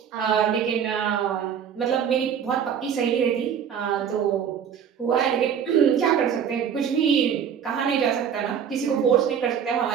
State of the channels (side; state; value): left; quieter; 8.1 dB